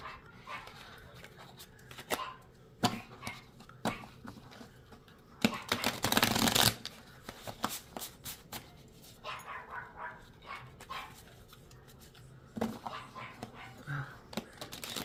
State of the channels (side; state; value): both; identical; correlation 1.00